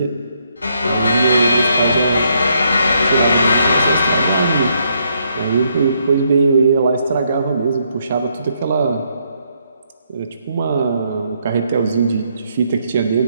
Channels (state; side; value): inverted; both; correlation -0.74